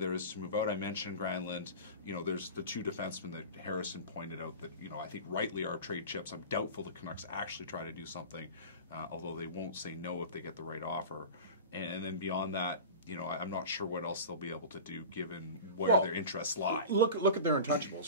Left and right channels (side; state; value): both; inverted; correlation -0.33